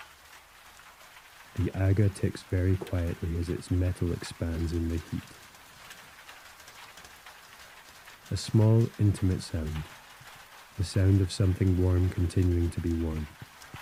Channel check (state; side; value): identical; both; correlation 1.00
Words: The Aga ticks very quietly as its metal expands in the heat. A small, intimate sound. The sound of something warm continuing to be warm,